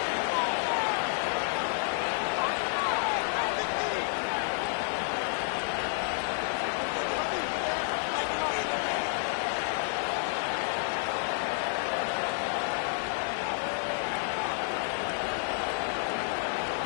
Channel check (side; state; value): right; silent; 57 dB below the other